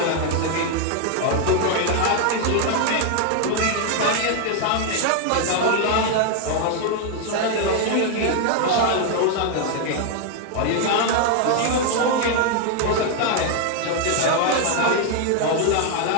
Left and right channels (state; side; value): different; both; correlation 0.00